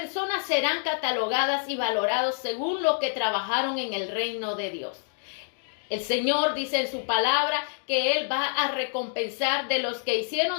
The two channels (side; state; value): right; silent; digital silence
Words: serán catalogadas y valoradas según lo que trabajaron en el reino de Dios. El Señor dice en su palabra que Él va a recompensar de los que